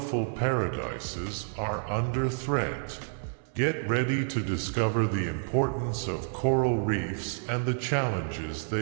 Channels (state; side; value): silent; left; 58 dB below the other